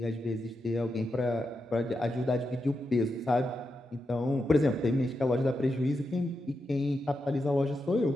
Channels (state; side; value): normal; both; correlation 0.86